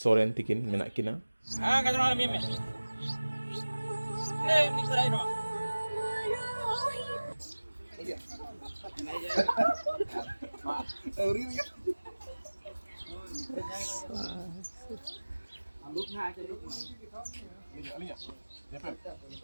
सोरेन तिकिन मेना किना हाँ कैसे मालूम है नहीं मिक्सर आई ना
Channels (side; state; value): both; inverted; correlation -1.00